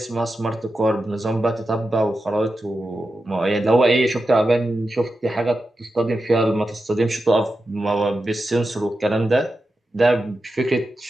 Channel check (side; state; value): both; normal; correlation 0.90